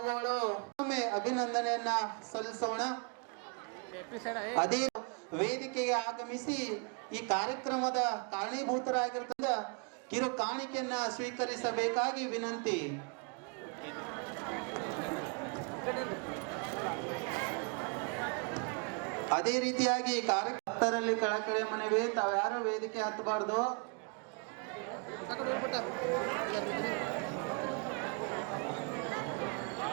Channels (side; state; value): left; quieter; 35.1 dB